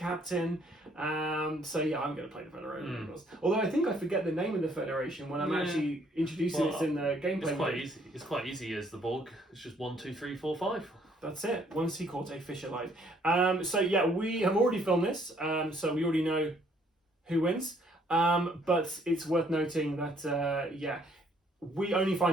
So yeah, I'm going to play the Federation. Although I think I forget the name of the Federation when I'm actually introducing it in the gameplay. It's quite easy. It's quite easy as the Borg. It's just 1, 2, 3, 4, 5. That's it. One sea corte, fish alive. So yeah, we have already filmed this. So we already know who wins. But it's worth noting that we only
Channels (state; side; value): normal; both; correlation 0.65